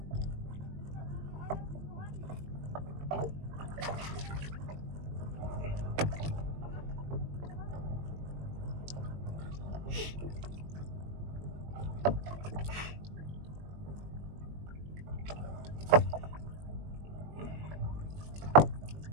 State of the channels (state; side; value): late; left; 20 ms